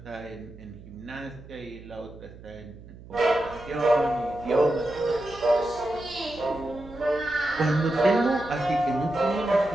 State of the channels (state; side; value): noise; right; hum, 18 dB below the sound